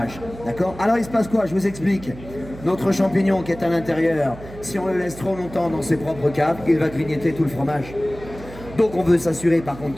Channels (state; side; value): noise; right; hum, 15 dB below the sound